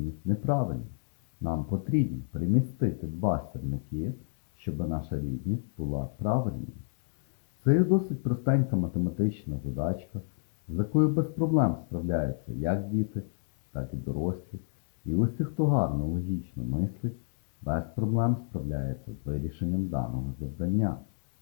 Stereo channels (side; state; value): right; silent; 58 dB below the other